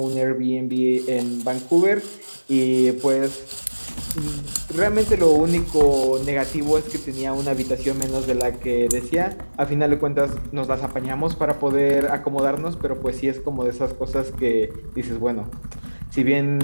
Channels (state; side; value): inverted; both; correlation -1.00